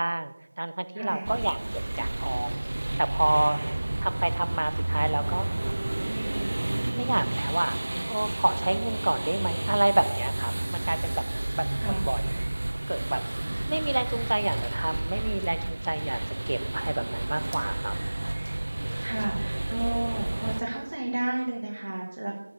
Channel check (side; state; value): both; inverted; correlation -1.00